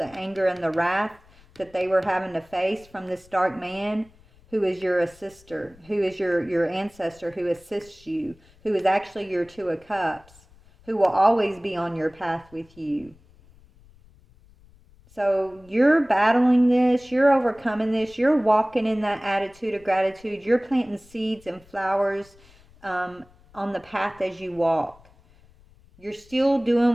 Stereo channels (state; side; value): noise; left; rumble, 27 dB below the sound